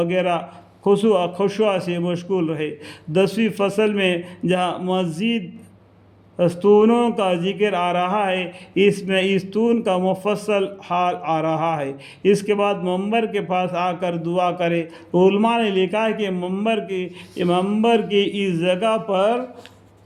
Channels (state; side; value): identical; both; correlation 1.00